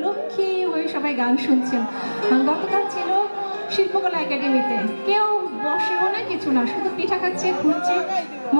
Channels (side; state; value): both; inverted; correlation -1.00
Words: লক্ষ্মী হয়ে সবাই গান শুনছেন। গতকাল ছিল শিল্পকলা একাডেমিতে, কেউ বসেও না কিছু না, শুধু পিঠা খাচ্ছে ঘুরছে,